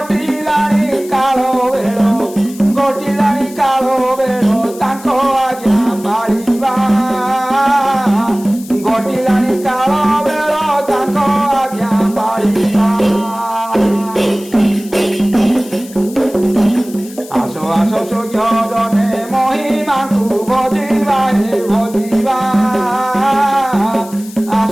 কাল বেড় ঘটিলানি কাল বেড় তাଙ୍କ আজ্ঞା পাଳିବା ঘটিলানি কাল বেড় তাଙ୍କ আজ্ঞା পাଳିବା আস আস সূর্যদনে মহিমাকু ভজিবা হে ভজিবা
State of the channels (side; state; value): left; noise; hiss, 19 dB below the sound